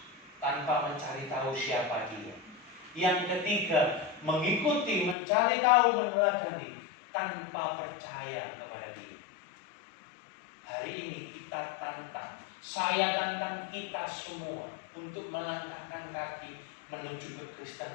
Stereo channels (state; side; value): drops out; right; at 5.2 s